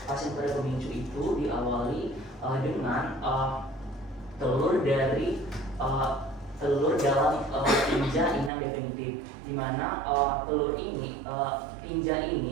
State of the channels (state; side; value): drops out; left; at 8.5 s